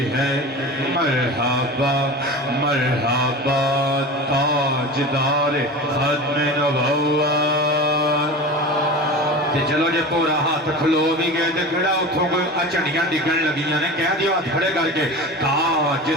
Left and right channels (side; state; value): both; normal; correlation 0.32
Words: ہے۔ مرحبا مرحبا تاجدار ختم نبوت۔ چلو جے پورا ہاتھ کھلو بھی گئے تے کھڑا اتھوں کوئی اچھڑیاں ڈگن لگیاں نے، کہہ دیو ہاتھ کھڑے کر کے،